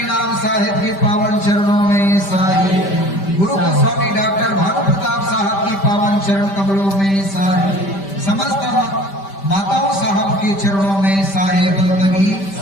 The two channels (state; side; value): late; right; 5.1 ms